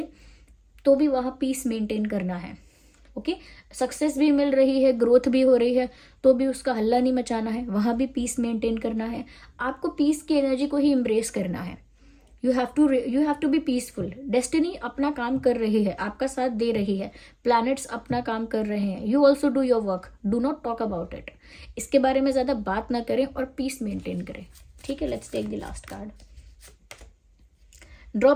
तो भी वहाँ पीस मेंटेन करना है। ओके, सक्सेस भी मिल रही है, ग्रोथ भी हो रही है, तो भी उसका हल्ला नहीं मचाना है, वहाँ भी पीस मेंटेन करना है। आपको पीस की एनर्जी को ही एम्ब्रेस करना है। You have to be peaceful. Destiny अपना काम कर रही है, आपका साथ दे रही है, प्लैनेट्स अपना काम कर रहे हैं। You also do your work, do not talk about it. इसके बारे में ज़्यादा बात ना करें और पीस मेंटेन करें। ठीक है, let's take the last card.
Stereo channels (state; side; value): identical; both; correlation 1.00